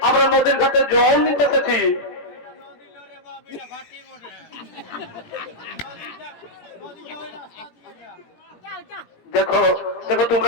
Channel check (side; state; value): right; late; 17 ms